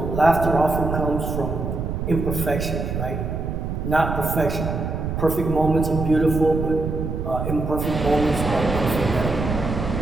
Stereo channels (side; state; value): right; noise; rumble, 3 dB below the sound